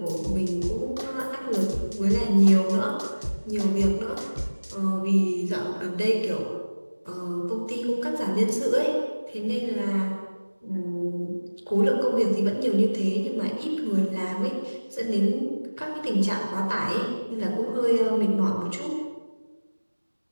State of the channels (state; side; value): inverted; both; correlation -1.00